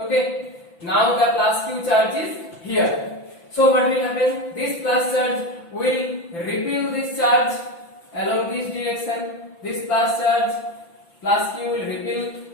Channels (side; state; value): right; late; 5.9 ms